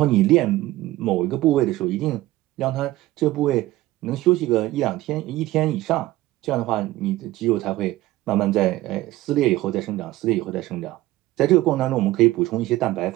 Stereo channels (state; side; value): quieter; left; 17.0 dB